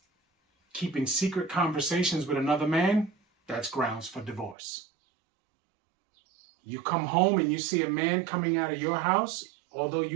keeping secret conversations with another man, that's grounds for divorce. You come home and you see a man coming out of your house, although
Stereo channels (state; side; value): drops out; left; at 4.5 s